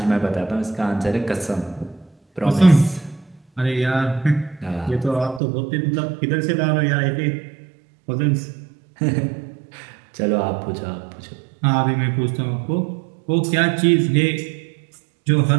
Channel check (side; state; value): left; drops out; at 5.4 s